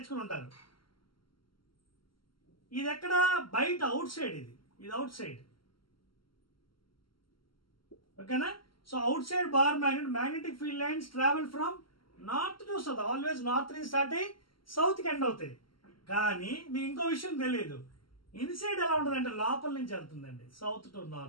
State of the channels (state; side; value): late; right; 0.73 ms